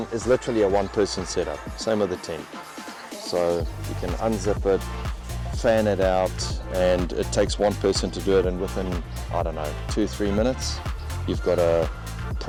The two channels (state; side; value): identical; both; correlation 1.00